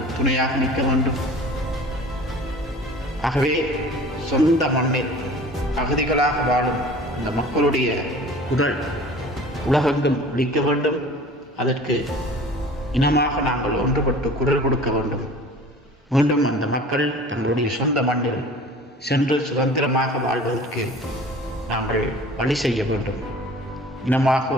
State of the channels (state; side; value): normal; both; correlation 0.44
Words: துணையாக நிற்க வேண்டும். ஆகவே சொந்த மண்ணில் அகதிகளாக வாழும் அந்த மக்களுடைய குரல் உலகெங்கும் ஒலிக்க வேண்டும். அதற்கு இனமாக நாங்கள் ஒன்றுபட்டு குரல் கொடுக்க வேண்டும். மீண்டும் அந்த மக்கள் தங்களுடைய சொந்த மண்ணில் சென்று சுதந்திரமாக வாழ்வதற்கு நாங்கள் வழி செய்ய வேண்டும். இனமாக